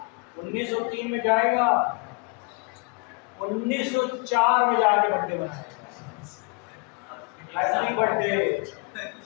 1903 में जाएगा, 1904 में जाके बर्थडे मनाएगा। Happy birthday,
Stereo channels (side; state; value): right; quieter; 32.3 dB